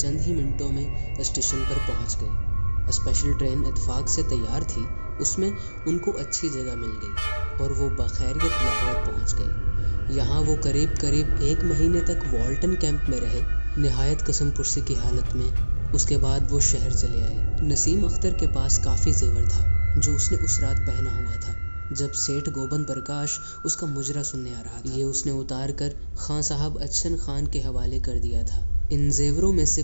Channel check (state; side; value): inverted; both; correlation -1.00